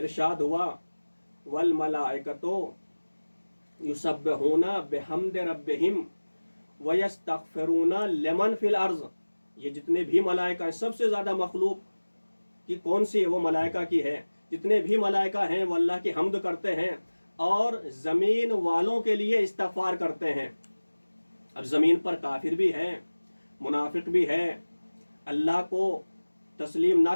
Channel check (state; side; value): inverted; both; correlation -1.00